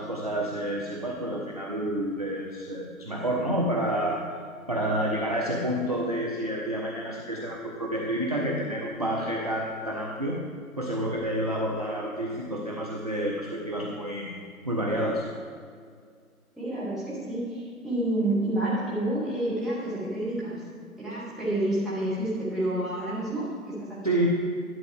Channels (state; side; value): normal; both; correlation 0.30